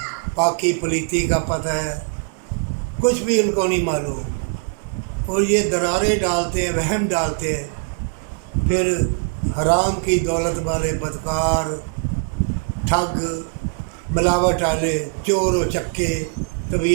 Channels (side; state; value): left; quieter; 38.7 dB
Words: پاکی پلیتی کا پتہ ہے، کچھ بھی ان کو نہیں معلوم، اور یہ درارے ڈالتے ہیں، وہم ڈالتے ہیں، پھر حرام کی دولت والے بدکار، ٹھگ، ملاوٹ والے، چور و چکے،